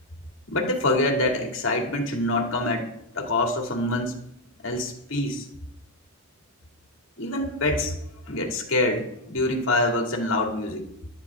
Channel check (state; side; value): normal; both; correlation 0.02